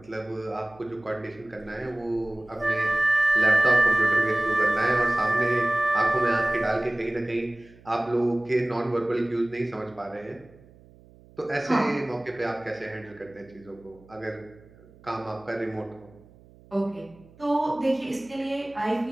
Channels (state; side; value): noise; right; hum, 25 dB below the sound